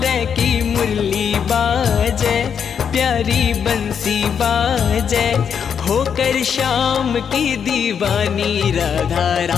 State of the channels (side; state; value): right; quieter; 7.4 dB